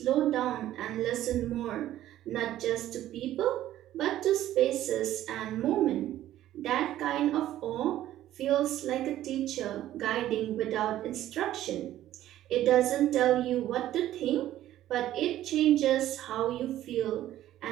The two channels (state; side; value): quieter; left; 13.2 dB